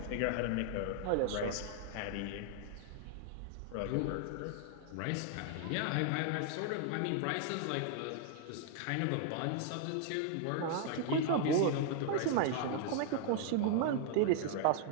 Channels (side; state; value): both; different; correlation 0.00